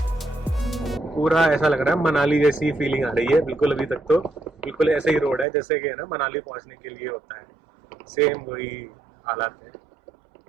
पूरा ऐसा लग रहा है मनाली जैसी फीलिंग आ रही है बिल्कुल। अभी तक तो बिल्कुल ऐसे ही रोड है जैसे कि है ना मनाली पहुंचने के लिए होता है, सेम वही हालात है।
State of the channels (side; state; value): left; drops out; at 5.5 s